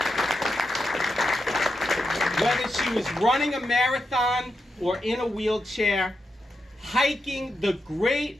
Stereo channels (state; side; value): normal; both; correlation 0.86